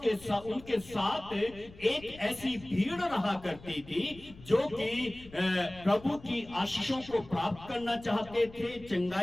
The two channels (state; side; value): noise; left; rumble, 20 dB below the sound